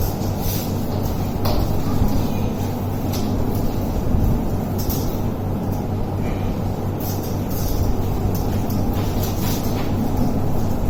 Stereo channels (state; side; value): identical; both; correlation 1.00